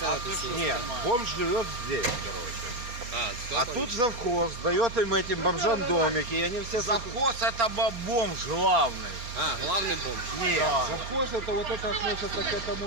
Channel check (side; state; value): left; late; 4.3 ms